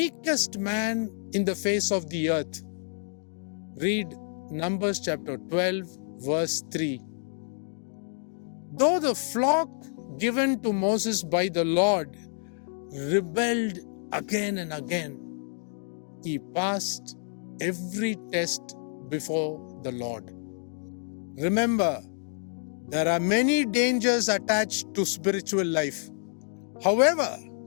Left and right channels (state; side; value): silent; right; 59 dB below the other